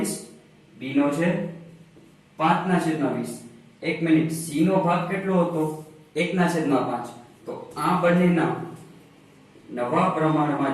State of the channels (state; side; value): identical; both; correlation 1.00